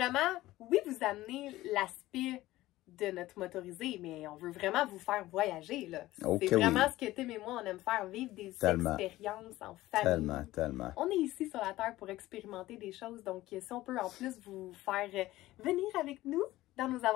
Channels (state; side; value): quieter; right; 16.7 dB